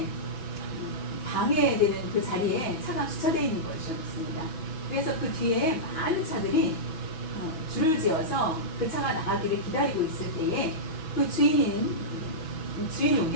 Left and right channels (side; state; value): right; late; 6.2 ms